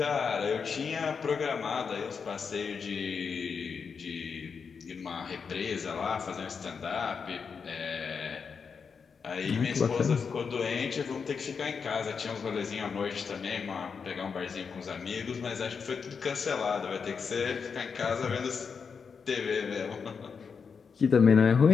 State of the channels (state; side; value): quieter; right; 5.9 dB